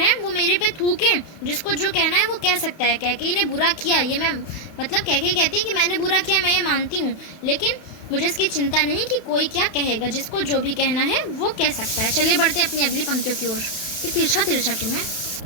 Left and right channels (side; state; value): right; late; 31 ms